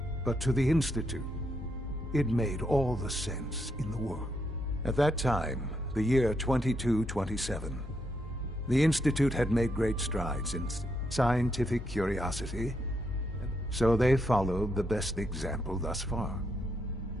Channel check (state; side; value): normal; both; correlation 0.79